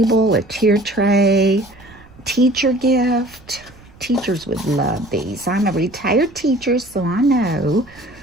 a tier tray, teacher gift. Teachers would love these. I'm a retired teacher, so I know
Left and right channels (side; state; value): right; noise; rumble, 24 dB below the sound